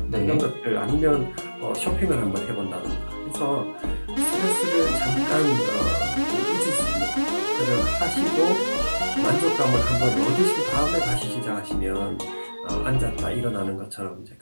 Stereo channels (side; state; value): both; inverted; correlation -1.00